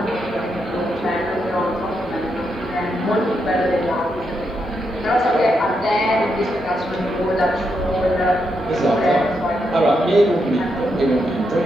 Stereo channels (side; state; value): both; normal; correlation 0.82